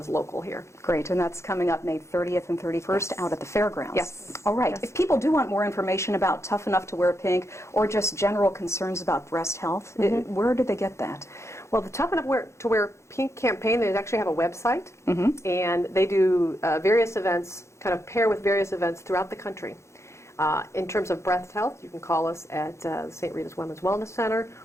local here. Great, and that's coming up May 30th and 31st out at the fairgrounds. Yes. All right. Yes. If people do want more information about Tough Enough to Wear Pink or just general concerns about breast health, where do they get that? Well, the Tough Enough to Wear Pink campaign, they actually have a website, and they do various events, kind of pair with various events throughout the country. In terms of breast health, you can call us at St. Rita's Women's Wellness Center,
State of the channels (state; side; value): late; right; 0.14 ms